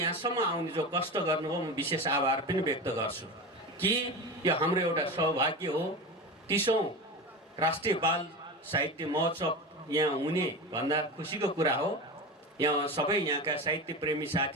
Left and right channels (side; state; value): both; normal; correlation 0.25